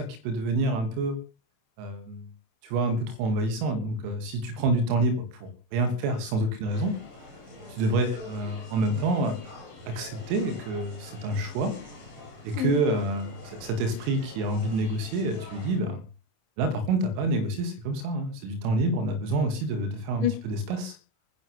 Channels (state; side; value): late; left; 27 ms